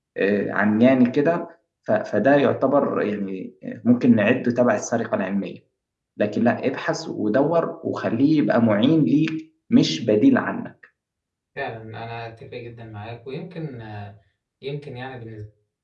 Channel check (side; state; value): both; identical; correlation 1.00